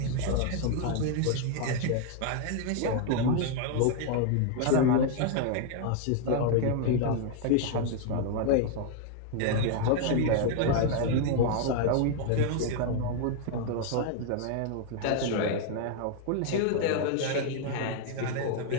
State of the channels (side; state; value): both; different; correlation 0.00